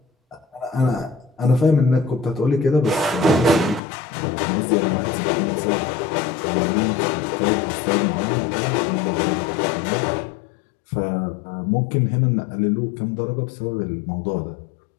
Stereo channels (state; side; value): drops out; right; at 3.8 s